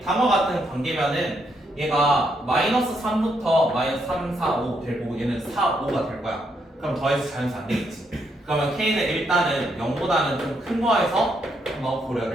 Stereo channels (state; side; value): normal; both; correlation 0.77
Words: 다음과 같은 관계면은 얘가 마이너스 3부터 마이너스 3, 4, 5 될 거고 얘는 4, 5가 될 거야. 그럼 더해서 자연수 안 되겠지. 그러면 K는 일단은 0보다는 좀 큰 거에서 한번